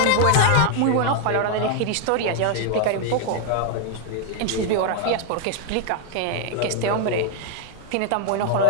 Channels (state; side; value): different; both; correlation 0.01